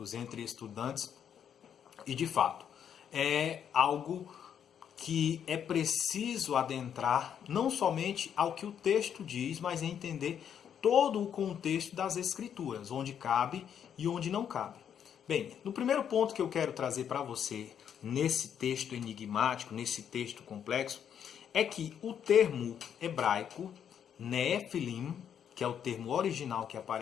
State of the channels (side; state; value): right; quieter; 8.6 dB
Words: entre estudantes, e de fato é algo que é preciso adentrar não somente ao que o texto diz, mas entender todo o contexto das Escrituras, onde cabe e onde não cabe. Bem, no primeiro ponto que eu quero trazer para você, nesse texto enigmático, nesse texto complexo, é que o termo hebraico Nefilim, que é o termo original que